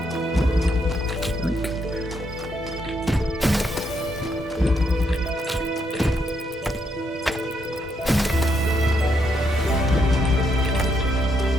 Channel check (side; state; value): both; normal; correlation 0.77